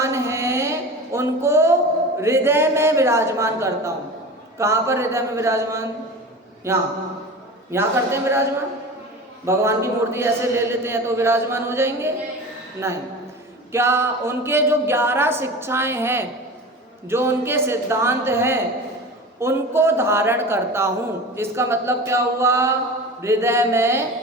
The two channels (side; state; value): both; normal; correlation 0.33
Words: हैं उनको हृदय में विराजमान करता हूँ। कहाँ पर हृदय में विराजमान? यहाँ करते हैं विराजमान। भगवान की मूर्ति ऐसे ले लेते हैं तो विराजमान हो जाएंगे? नहीं। क्या उनके जो 11 शिक्षाएं हैं, जो उनके सिद्धांत हैं, उनको धारण करता हूँ। इसका मतलब क्या हुआ? हृदय